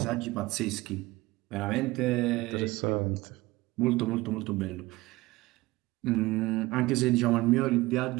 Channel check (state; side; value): quieter; left; 20.0 dB